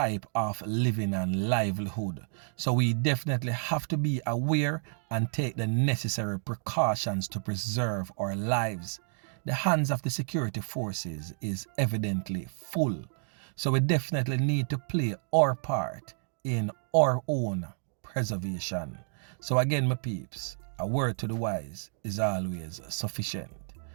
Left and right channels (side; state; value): left; silent; 58 dB below the other